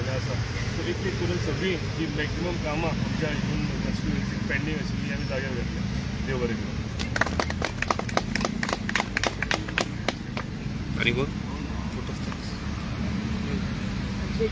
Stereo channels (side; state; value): both; identical; correlation 1.00